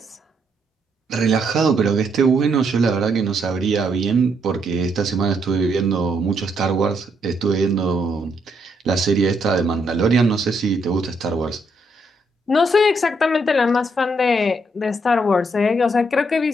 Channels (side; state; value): both; normal; correlation 0.75